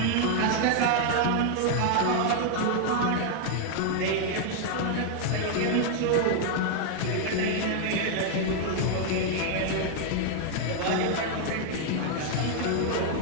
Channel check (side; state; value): both; different; correlation 0.00